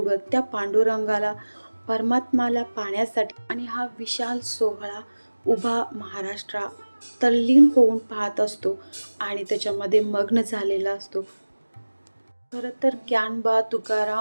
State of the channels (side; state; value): both; inverted; correlation -1.00